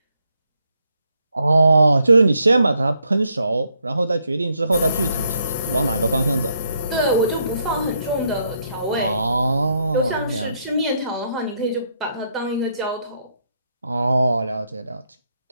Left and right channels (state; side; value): inverted; both; correlation -0.75